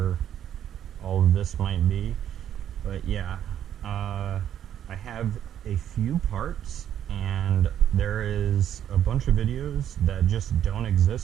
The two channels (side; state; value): left; quieter; 10.2 dB